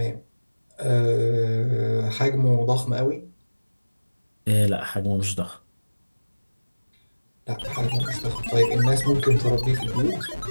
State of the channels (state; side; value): inverted; both; correlation -1.00